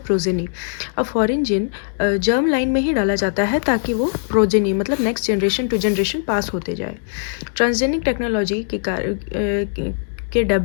progeny. अब फॉरेन जीन जर्म लाइन में ही डाला जाता है ताकि वो प्रोजेनी मतलब next generation to generation pass होते जाए। ट्रांसजेनिक टेक्नोलॉजी के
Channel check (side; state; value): right; silent; digital silence